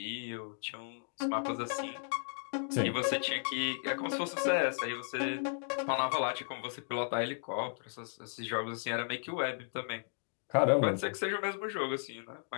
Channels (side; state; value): right; silent; digital silence